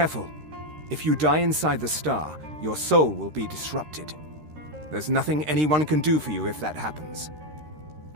If you die inside the star, your soul will be disrupted. There's nothing anyone can do for you if that happens.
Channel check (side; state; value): left; late; 13 ms